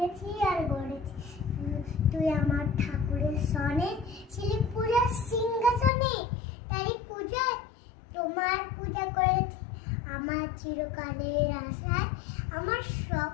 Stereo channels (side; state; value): right; drops out; at 5.9 s